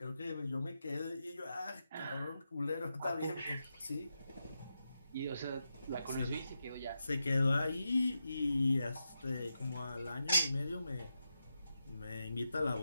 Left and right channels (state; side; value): inverted; both; correlation -0.87